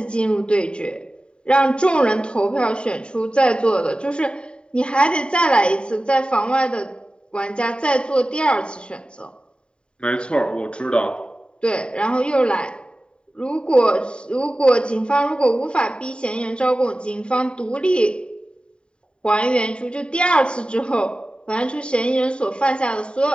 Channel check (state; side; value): late; right; 0.052 ms